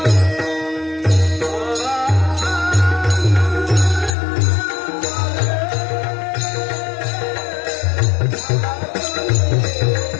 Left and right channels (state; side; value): drops out; right; at 4.2 s